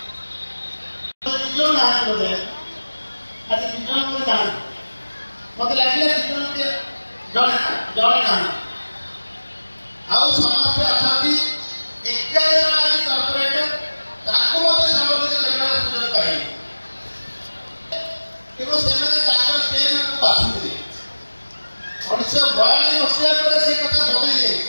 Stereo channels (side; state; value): both; inverted; correlation -1.00